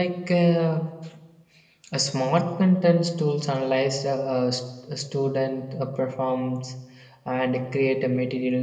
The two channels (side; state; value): both; identical; correlation 1.00